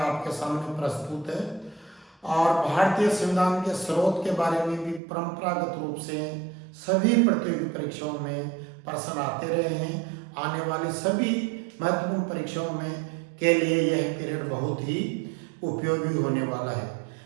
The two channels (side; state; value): left; drops out; at 5.0 s